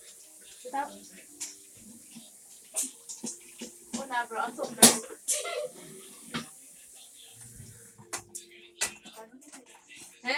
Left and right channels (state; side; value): identical; both; correlation 1.00